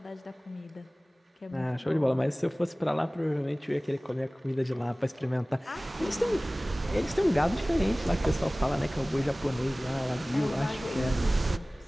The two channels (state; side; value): normal; both; correlation 0.98